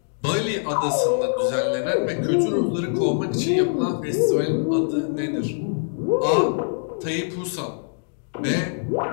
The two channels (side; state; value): right; silent; 61 dB below the other